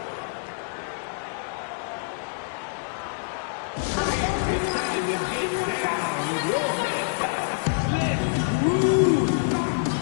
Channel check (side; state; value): right; silent; digital silence